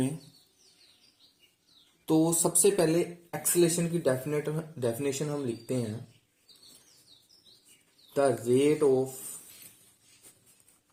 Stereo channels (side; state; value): both; identical; correlation 1.00